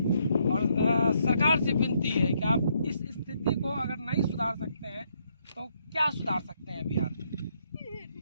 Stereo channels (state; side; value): inverted; both; correlation -0.73